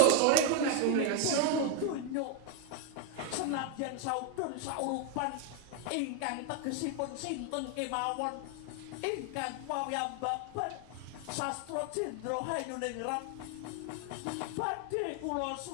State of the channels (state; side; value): different; both; correlation 0.01